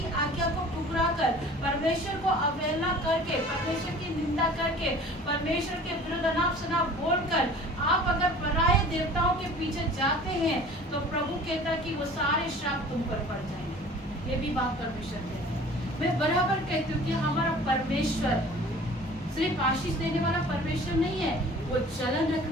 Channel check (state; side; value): normal; both; correlation 0.45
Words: आज्ञा को ठुकरा कर, परमेश्वर को अवहेलना करके, परमेश्वर की निंदा करके, परमेश्वर के विरुद्ध अनाप शनाप बोलकर आप अगर पराये देवताओं के पीछे जाते हैं तो प्रभु कहता है कि वो सारे श्राप तुम पर पड़ जाएंगे। ये भी बात परमेश्वर कहता है। मैं बराबर कहती हूँ कि हमारा परमेश्वर सिर्फ आशीष देने वाला परमेश्वर नहीं है, वो जलन